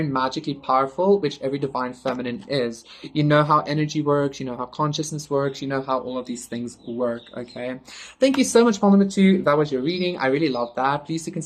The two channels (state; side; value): identical; both; correlation 1.00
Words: magically powerful, which every divine feminine is. You know how energy works, you know how consciousness works, you know how all of these things work, okay? Thank you so much, Paul number two. That was your reading. I really love that. Please do